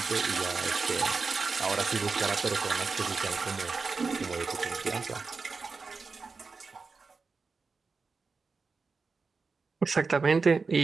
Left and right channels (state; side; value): quieter; left; 4.5 dB